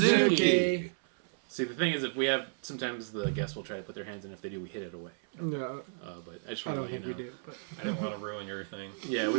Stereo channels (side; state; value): left; silent; 56 dB below the other